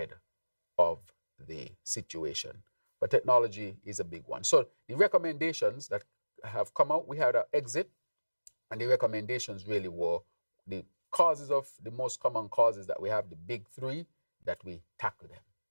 of the situation. But technology is a big one. So the recommendations that have come out, we had an exit, and the recommendations really were the most common causes that we have, the big three, that we tackle them.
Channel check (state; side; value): inverted; both; correlation -1.00